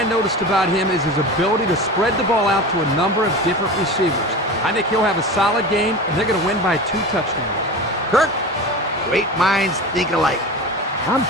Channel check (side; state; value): both; normal; correlation 0.30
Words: noticed about him is his ability to spread the ball out to a number of different receivers. I think he'll have a solid game, and they're going to win by 2 touchdowns. Kirk, great minds think alike. I'm